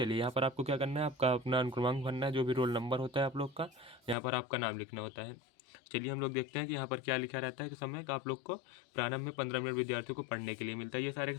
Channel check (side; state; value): right; drops out; at 4.2 s